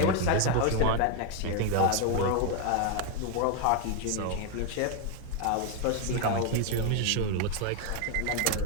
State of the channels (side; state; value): both; different; correlation 0.01